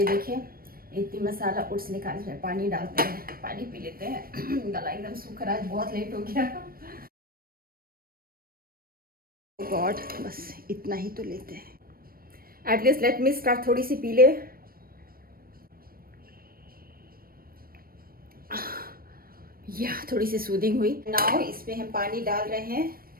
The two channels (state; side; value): late; left; 0.43 ms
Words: देखिए इतनी मसाला ओट्स निकाल रहे, पानी डालते हैं, पानी पी लेते हैं। गला एकदम सूख रहा है, बहुत लेट हो गया। गॉड बस इतना ही तो लेते हैं। At least let me start. थोड़ी सी पी ले। या थोड़ी सी सूदिंग हुई। नाउ इसमें हम पानी डाल रहे हैं,